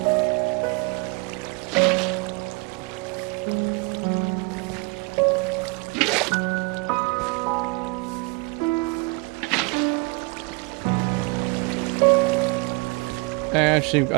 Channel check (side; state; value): left; quieter; 29.3 dB